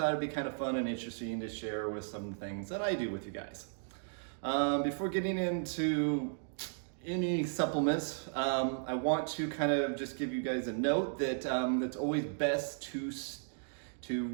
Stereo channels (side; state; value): left; silent; digital silence